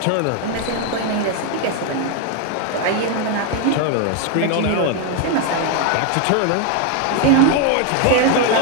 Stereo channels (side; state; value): both; different; correlation 0.01